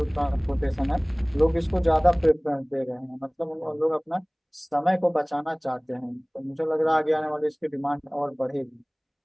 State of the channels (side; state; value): both; identical; correlation 1.00